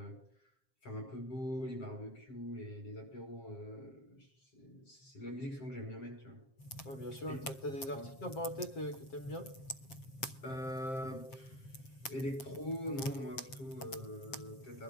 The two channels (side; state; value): right; late; 7.5 ms